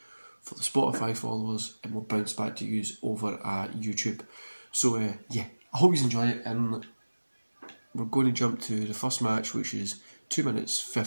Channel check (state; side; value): inverted; both; correlation -1.00